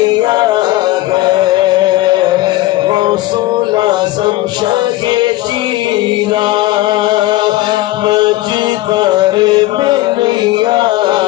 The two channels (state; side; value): quieter; right; 17.1 dB